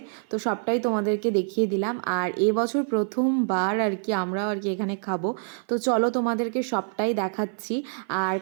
তো সবটাই তোমাদেরকে দেখিয়ে দিলাম। আর এবছর প্রথমবার আর কি আমরাও আর কি এখানে খাবো। তো চলো তোমাদেরকে সবটাই দেখাচ্ছি। আর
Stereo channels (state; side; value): silent; left; 57 dB below the other